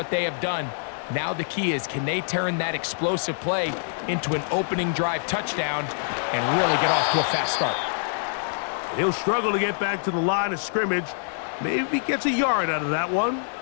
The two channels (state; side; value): silent; right; digital silence